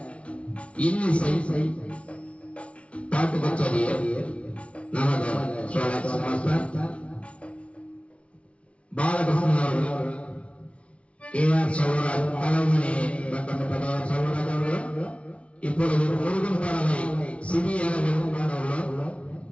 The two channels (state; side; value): late; right; 0.062 ms